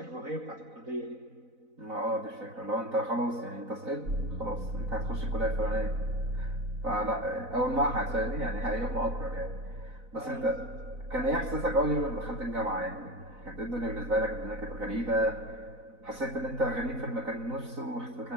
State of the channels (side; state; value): left; late; 4.0 ms